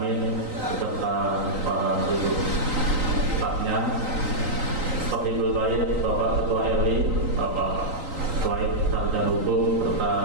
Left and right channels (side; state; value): left; late; 3.9 ms